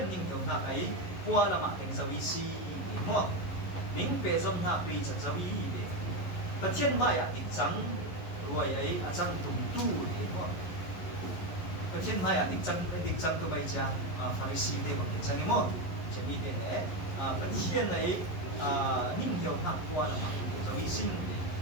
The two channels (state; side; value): late; right; 11 ms